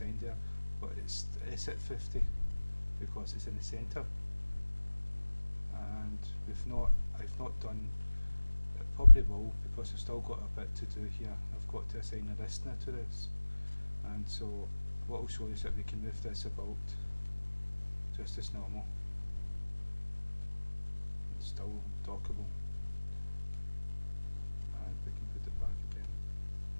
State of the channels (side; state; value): both; inverted; correlation -1.00